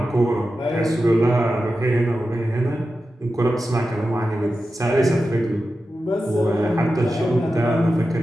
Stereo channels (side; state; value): both; normal; correlation 0.92